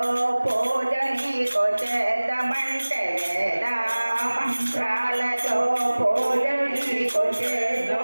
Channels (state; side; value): inverted; both; correlation -1.00